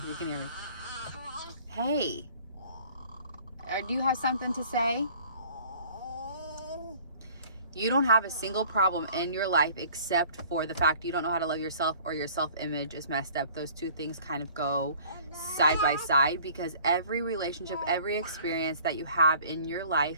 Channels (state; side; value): inverted; both; correlation -0.51